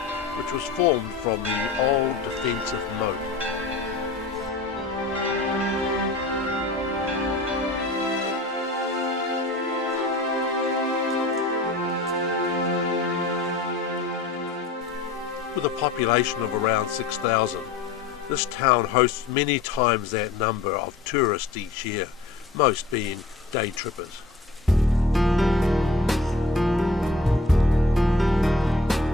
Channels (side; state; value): right; quieter; 3.3 dB